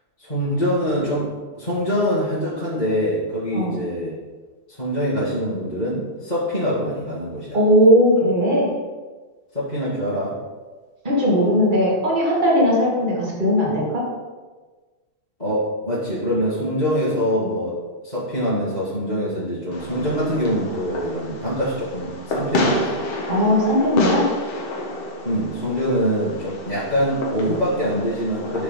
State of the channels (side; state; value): right; late; 2.7 ms